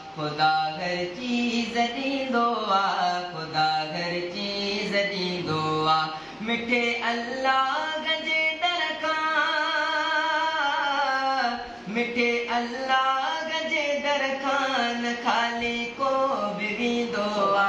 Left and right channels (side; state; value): both; identical; correlation 1.00